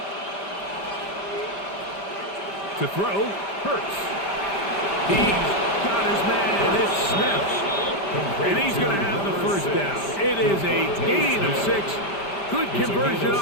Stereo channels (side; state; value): right; late; 5.1 ms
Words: To throw, Hurts. He's got his man. It's Smith. And he's going to have the 1st down. It is a gain of 6. Good conversion